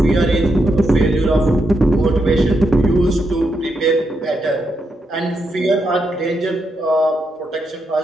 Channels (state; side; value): normal; both; correlation 0.82